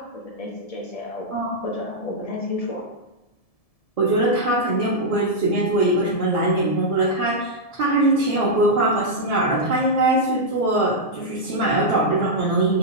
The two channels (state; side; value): late; right; 1.7 ms